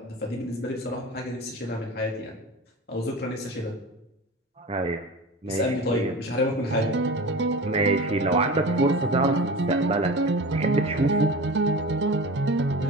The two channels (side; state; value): both; normal; correlation 0.33